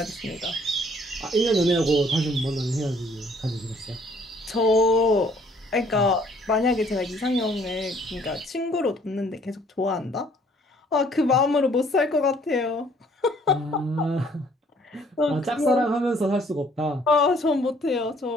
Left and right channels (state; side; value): normal; both; correlation 0.61